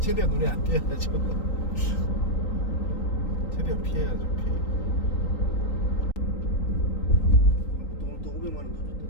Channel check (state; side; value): late; right; 3.8 ms